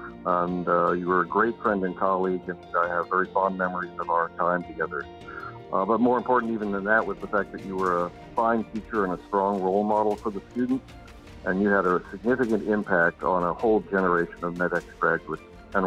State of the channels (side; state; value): both; identical; correlation 1.00